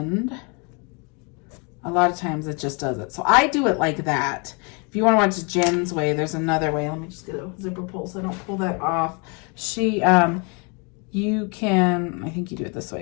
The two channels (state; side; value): quieter; right; 33.3 dB